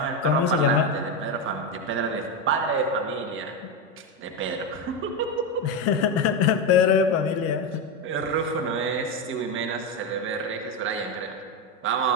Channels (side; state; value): both; normal; correlation 0.11